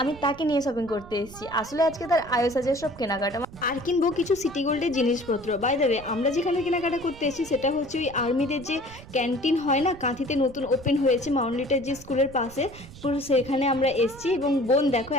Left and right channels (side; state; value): right; noise; rumble, 18 dB below the sound